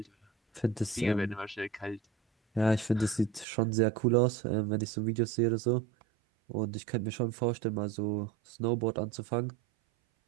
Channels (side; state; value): left; drops out; at 3.5 s